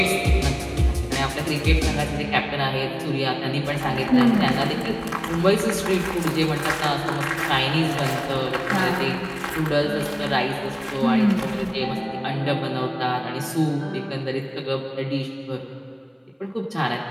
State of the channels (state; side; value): identical; both; correlation 1.00